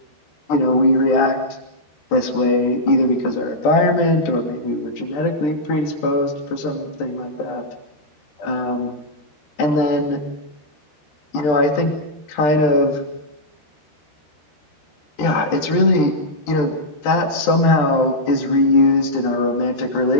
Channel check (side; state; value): right; late; 13 ms